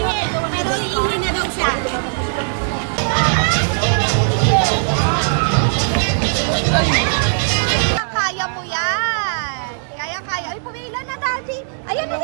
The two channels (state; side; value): silent; left; digital silence